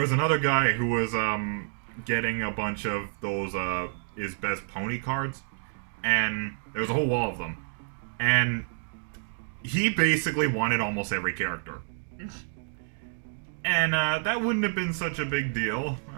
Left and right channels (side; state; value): left; silent; 57 dB below the other